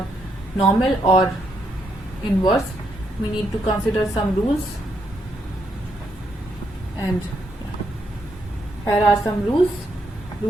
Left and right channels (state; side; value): normal; both; correlation 0.77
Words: normal or inverse, we need to consider some rules, and here are some rules.